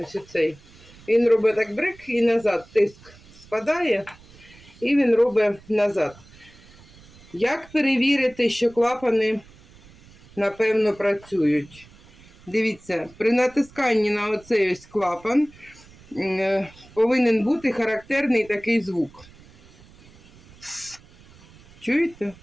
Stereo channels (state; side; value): noise; right; rumble, 24 dB below the sound